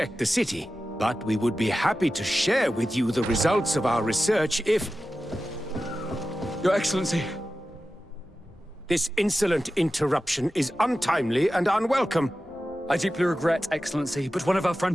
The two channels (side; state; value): both; normal; correlation 0.93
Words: the city. But we would be happy to share with you the results of our research if... Your Excellency. This insolent interruption is untimely and unwelcome. I deeply regret, Excellency, but one of our